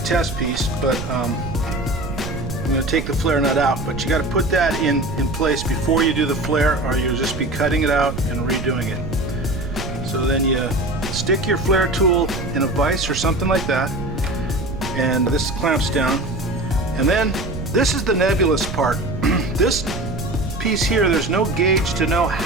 test piece, but I'm going to take the flare nut out, but you got to put that in place before you do the flare, or you'll just be cutting it out and redoing it. So then you stick your flare tool in a vise or something like that, and this clamps down. And then this is the nebulous part. This piece here, there's no gauge to know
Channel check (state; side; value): noise; right; rumble, 7 dB below the sound